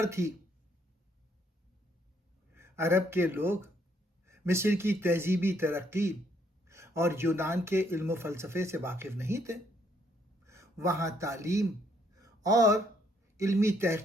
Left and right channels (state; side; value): normal; both; correlation 0.69